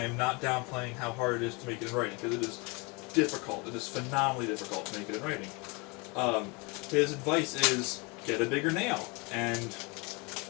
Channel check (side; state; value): right; quieter; 28.9 dB